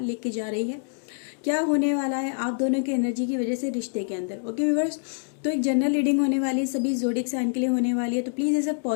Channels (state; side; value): silent; right; digital silence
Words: लेके जा रही है, क्या होने वाला है आप दोनों की एनर्जी की वजह से रिश्ते के अंदर। ओके व्यूअर्स, तो एक जनरल रीडिंग होने वाली है, सभी ज़ोडिएक साइन के लिए होने वाली है। तो प्लीज़ इसे